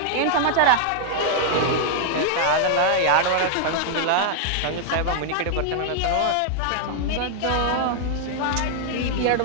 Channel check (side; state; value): both; different; correlation 0.00